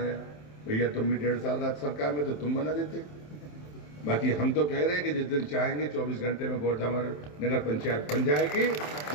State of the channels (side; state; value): right; late; 27 ms